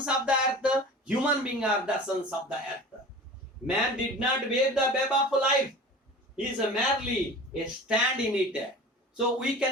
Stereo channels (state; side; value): normal; both; correlation 0.38